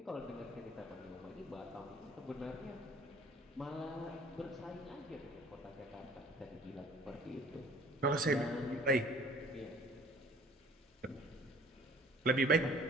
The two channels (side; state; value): both; normal; correlation 0.52